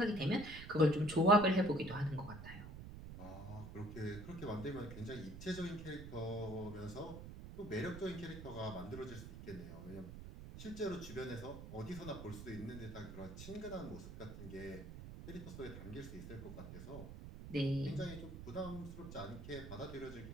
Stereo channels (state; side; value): noise; right; rumble, 10 dB below the sound